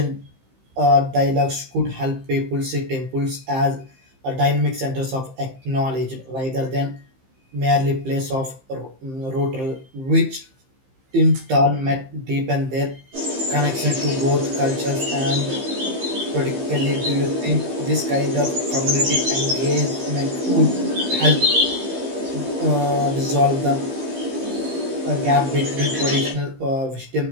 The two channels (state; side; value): late; left; 15 ms